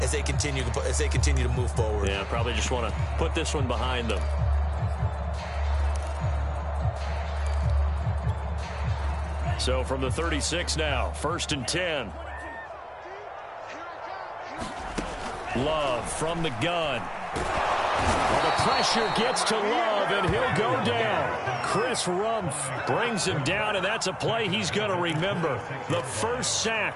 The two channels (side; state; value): both; identical; correlation 1.00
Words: as they continue to move forward. Yeah, probably just want to put this one behind them. So from the 36 now, 1st and 10. Love from the gun. Well, the pressure gets to Love, and he'll go down. Chris Rumph brings him down, and that's a play he's going to remember. The first